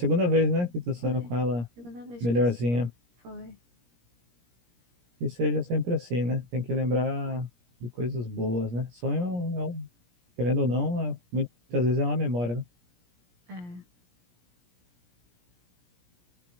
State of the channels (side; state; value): left; late; 17 ms